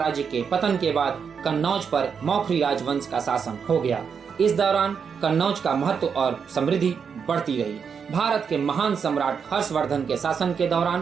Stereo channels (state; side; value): quieter; left; 6.5 dB